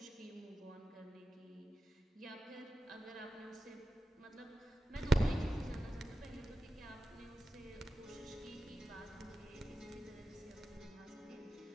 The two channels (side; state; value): both; normal; correlation 0.91